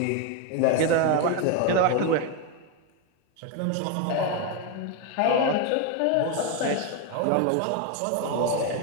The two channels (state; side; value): different; both; correlation 0.02